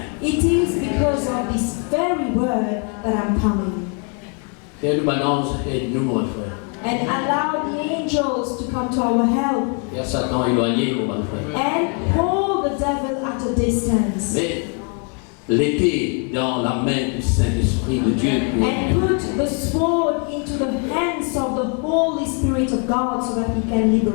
It is because of this very word that I'm coming. Père Manance, aide-nous, mon frère. And allow the angels to come to our help. Père Satan éloigné, mon frère. And hold the devil at a distance. Mais l'épée dans la main du Saint-Esprit de Dieu. And put the sword into the hands of the Holy Spirit of God so that He can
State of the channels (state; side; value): quieter; right; 39.0 dB